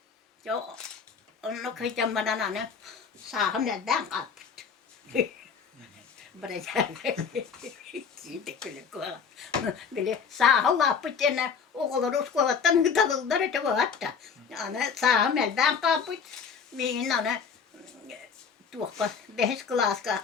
Yo onu kıyacağım bana ne saham elden kalptı. Siitä kyllä kuolla. Bile saa lapputena okolar uskolattan hıtalıllar et vaata. Ana saa meldan kaput. Mihin ana tuokka behes klaska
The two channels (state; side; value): quieter; right; 6.3 dB